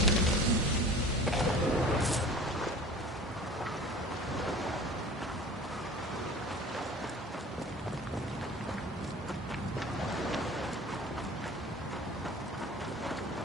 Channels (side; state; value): both; normal; correlation 0.41